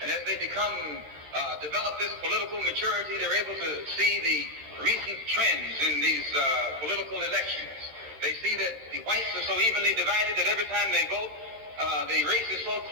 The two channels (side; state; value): left; late; 13 ms